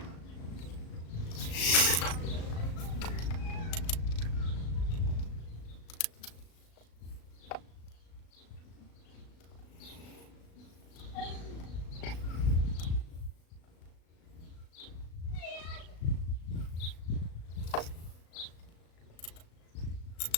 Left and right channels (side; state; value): right; late; 36 ms